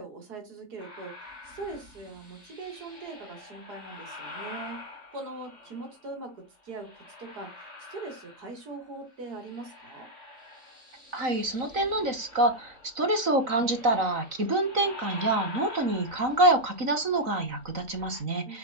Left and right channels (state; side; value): late; left; 3.9 ms